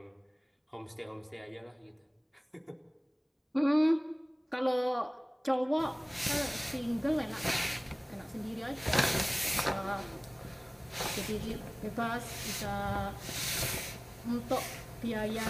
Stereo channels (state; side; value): identical; both; correlation 1.00